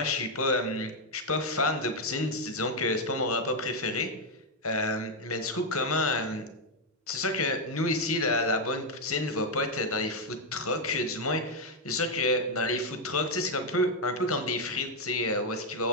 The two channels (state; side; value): normal; both; correlation 0.01